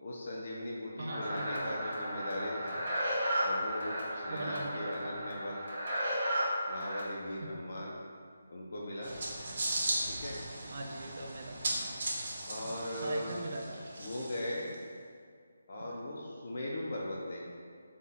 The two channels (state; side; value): inverted; both; correlation -0.84